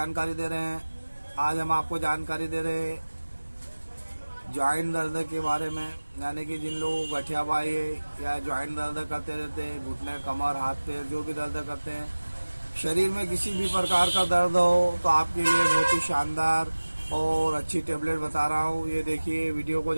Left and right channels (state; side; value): inverted; both; correlation -1.00